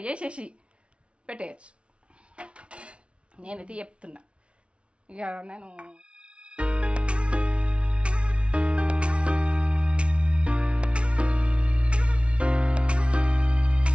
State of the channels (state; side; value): late; left; 0.060 ms